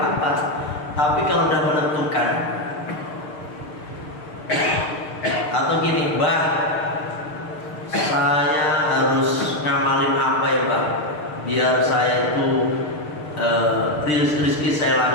Tapi kalau udah menentukan, atau gini, Mbak, saya harus ngamalin apa ya, Mbak? Biar saya itu rezeki saya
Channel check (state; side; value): late; right; 6.6 ms